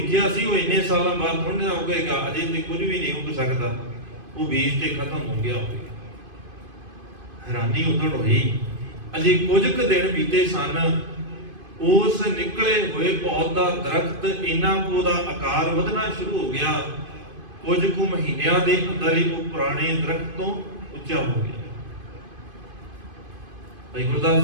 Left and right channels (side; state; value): left; late; 2.5 ms